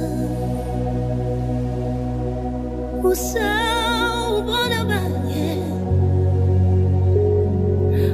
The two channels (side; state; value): both; identical; correlation 1.00